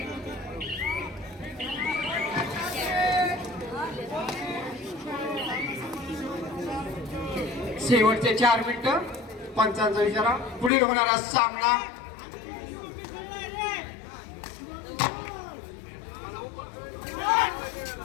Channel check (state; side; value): drops out; right; at 10.7 s